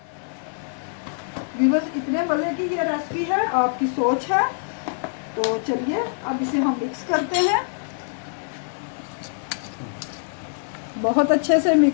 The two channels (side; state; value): right; silent; digital silence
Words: व्यूअर्स, इतने मज़े की ये रेसिपी है, आपकी सोच है। तो चलिए अब इसे हम मिक्स करते हैं। बहुत अच्छे से